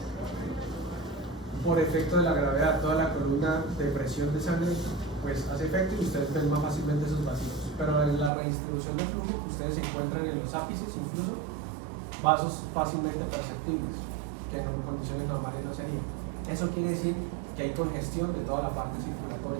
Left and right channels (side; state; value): left; drops out; at 8.3 s